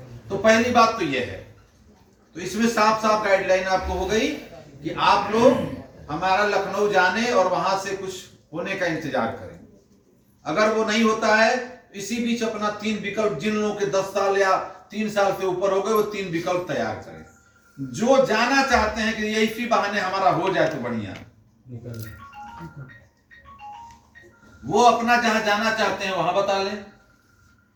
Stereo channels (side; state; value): both; identical; correlation 1.00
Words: तो पहली बात तो यह है, तो इसमें साफ साफ गाइडलाइन आपको हो गई कि आप लोग हमारा लखनऊ जाने और वहां से कुछ होने का इंतजार करें। अगर वो नहीं होता है, इसी बीच अपना 3 विकल्प, जिन लोगों के 10 साल या 3 साल से ऊपर हो गए, वो 3 विकल्प तैयार करें। जो जाना चाहते हैं कि ये इसी बहाने हमारा हो जाए तो बढ़िया, वो अपना जहां जाना चाहते हैं वहां बता लें।